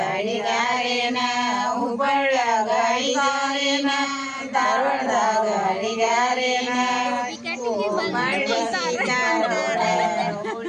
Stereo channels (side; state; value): both; identical; correlation 1.00